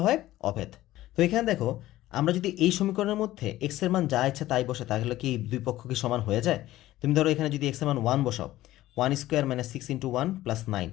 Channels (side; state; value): right; quieter; 15.5 dB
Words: হয় অভেদ। তো এখানে দেখো, আমরা যদি এই সমীকরণের মধ্যে এক্স এর মান যা ইচ্ছা তাই বসে, তাহলে কি দুই পক্ষ কি সমান হয়ে যায়? তুমি ধরো এখানে যদি এক্স এর মান 1 বসাও, 1² - 6 × 1 + 9